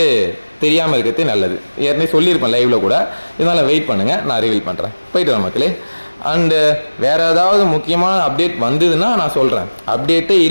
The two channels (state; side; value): inverted; both; correlation -1.00